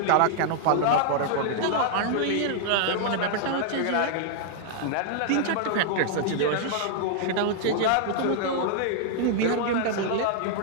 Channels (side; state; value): both; different; correlation -0.01